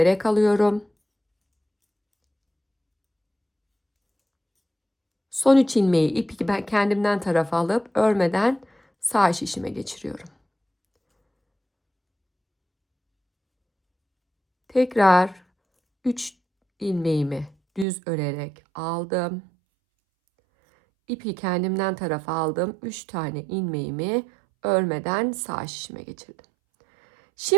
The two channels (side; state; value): left; drops out; at 17.9 s